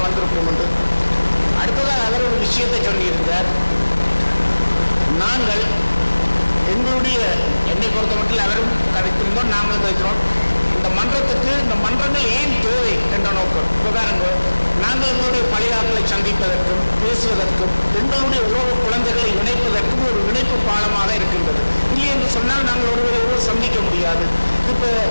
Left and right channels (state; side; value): inverted; both; correlation -1.00